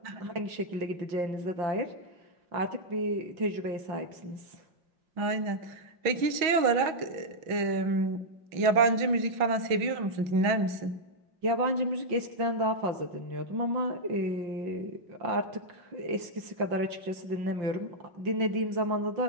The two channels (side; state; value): left; late; 5.6 ms